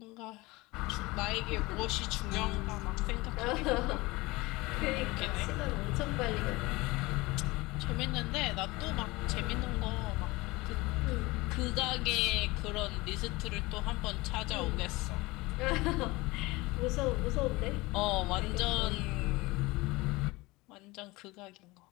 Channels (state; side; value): quieter; right; 22.1 dB